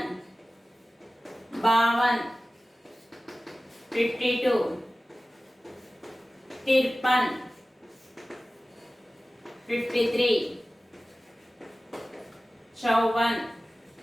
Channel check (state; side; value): normal; both; correlation 0.96